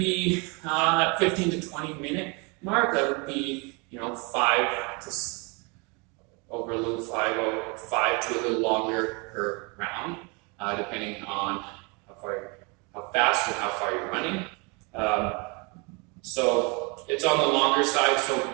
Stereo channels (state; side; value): quieter; left; 30.7 dB